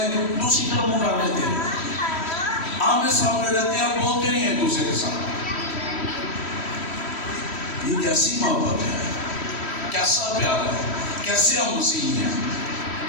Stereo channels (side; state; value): right; late; 3.1 ms